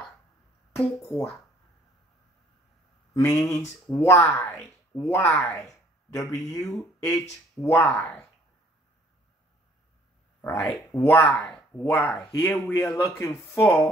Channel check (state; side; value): normal; both; correlation 0.59